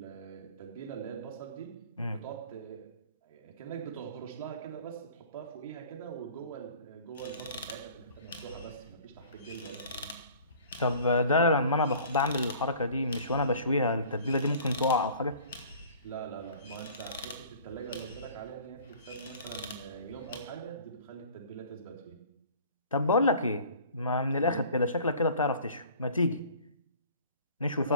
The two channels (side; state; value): both; inverted; correlation -0.48